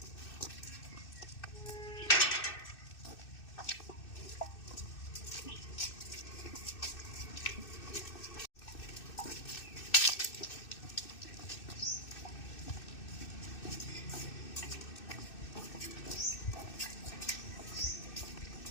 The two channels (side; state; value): right; late; 2.6 ms